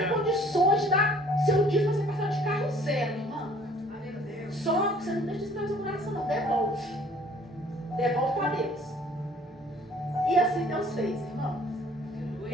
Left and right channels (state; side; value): normal; both; correlation 0.56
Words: condições de dar seu dízimo para você passar de carro zero, irmã. Só que você não deixa isso no seu coração, não. Devolve para Deus. E assim Deus fez, irmão.